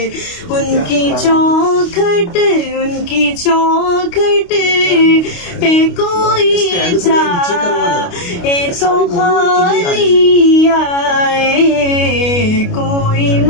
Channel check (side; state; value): right; late; 29 ms